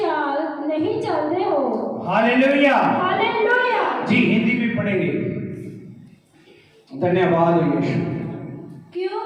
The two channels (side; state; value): both; identical; correlation 1.00